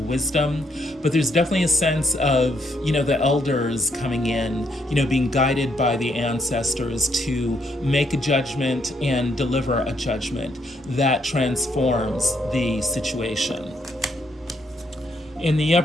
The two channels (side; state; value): both; normal; correlation 0.73